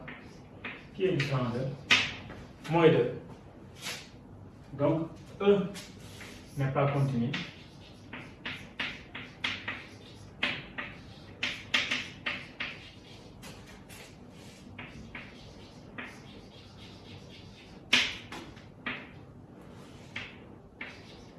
qui est différent de moins 2. Donc, E n'est pas continu.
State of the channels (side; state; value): both; identical; correlation 1.00